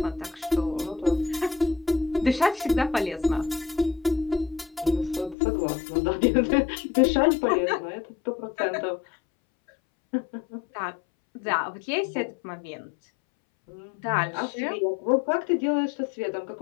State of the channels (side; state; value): right; drops out; at 5.4 s